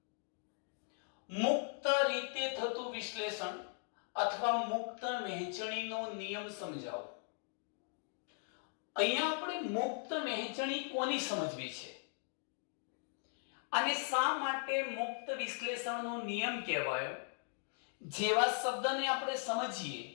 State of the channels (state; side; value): silent; right; 52 dB below the other